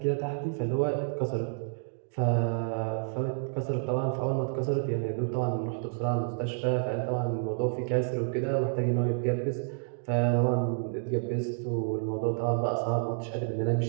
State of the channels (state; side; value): silent; left; digital silence